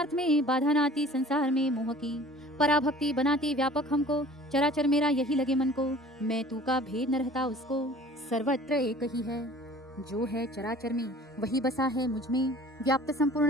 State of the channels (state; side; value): normal; both; correlation 0.48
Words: में, बाधा न आती संसार में मोह की। पराभक्ति बनाती व्यापक हमको, चराचर मेरा यही लगे मन को, मैं तू का भेद न रहता उसको। सर्वत्र एक ही है, जो है चराचर में, वही बसा है मुझ में, व्याप्त